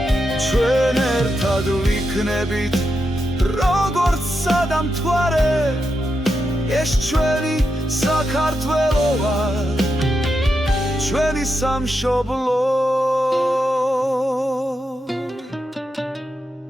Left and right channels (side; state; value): both; normal; correlation 0.86